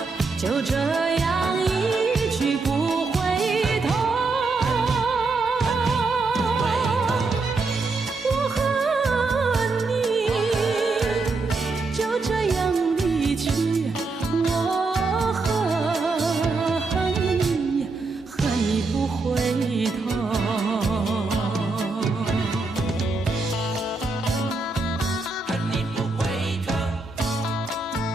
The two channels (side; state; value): left; quieter; 3.8 dB